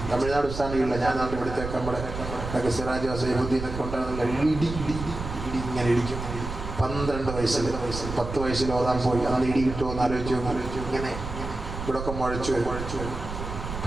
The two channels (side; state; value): right; noise; rumble, 7 dB below the sound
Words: തമിഴ്നാട് ഉസ്താദില്ല. ഞാൻ നാട്ടിൽ ഇവിടുത്തേക്ക് നമ്മുടെ സിറാജ് വസീബുദ്ദീനൊക്കെ ഉണ്ടാകുന്നില്ല. ഇടി ഇങ്ങനെ ഇടിക്കും. 12 വയസ്സിൽ 10 വയസ്സിൽ ഓതാൻ പോയി. അന്ന് ഇടി കിട്ടുമോ എന്ന് ആലോചിച്ചു. ഇങ്ങനെ ഇവിടെയൊക്കെ മുഴച്ചു